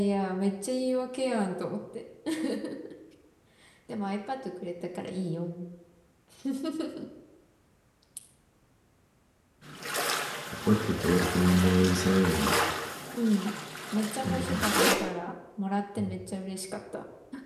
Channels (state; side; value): identical; both; correlation 1.00